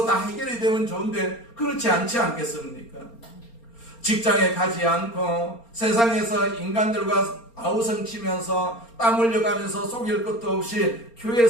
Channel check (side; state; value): right; late; 4.3 ms